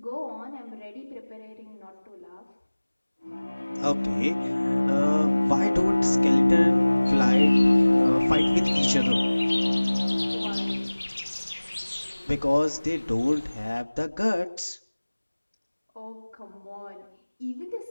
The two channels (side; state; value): both; inverted; correlation -1.00